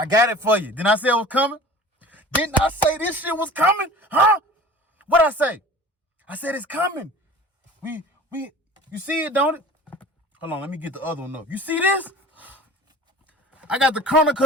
got it for you. Didn't I say it was coming? Didn't I say this shit was coming? Huh? What'd I say? I said it's coming. You see it, don't it? Hold on, let me get the other one up. You see this? I got the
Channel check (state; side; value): normal; both; correlation 0.42